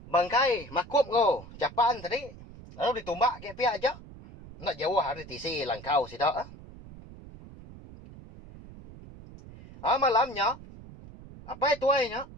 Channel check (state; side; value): noise; right; rumble, 17 dB below the sound